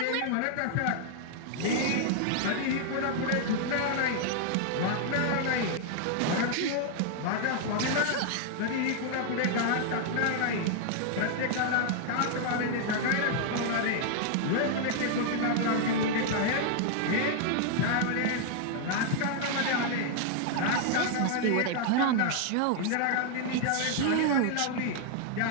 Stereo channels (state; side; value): different; both; correlation 0.00